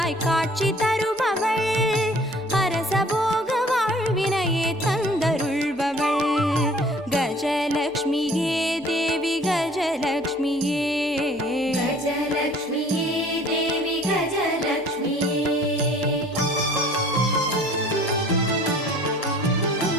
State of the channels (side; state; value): both; normal; correlation 0.52